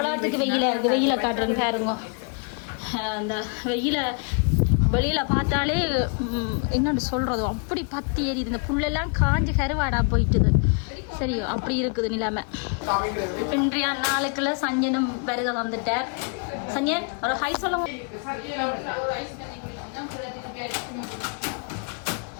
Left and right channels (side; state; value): right; quieter; 38.0 dB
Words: வெயில இருக்கு வெயில காட்டுறேன்னு பாருங்க அந்த வெயில வெளியில பார்த்தாலே என்னன்னு சொல்றது அப்படி பத்தி ஏறிது இந்த புல்லெல்லாம் காஞ்சி கருவாடா போயிட்டுது சரியோ அப்படி இருக்குது நிலைமை இன்றைய நாளுக்குள்ள சஞ்சனும் வருக வந்துட்டார் சஞ்சன் ஒரு ஹை சொல்லுங்க